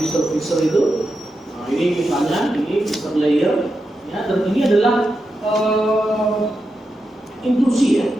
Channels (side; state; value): both; normal; correlation 0.88